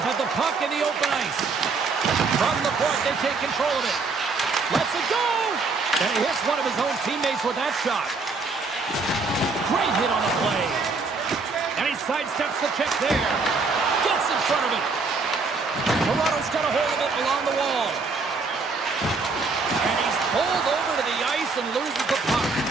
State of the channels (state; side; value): quieter; left; 4.1 dB